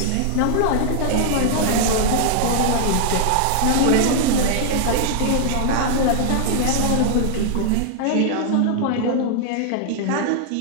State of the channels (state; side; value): different; both; correlation 0.00